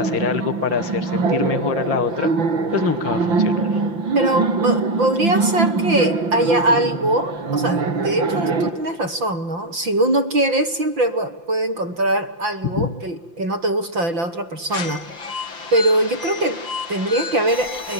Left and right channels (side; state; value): left; late; 5.9 ms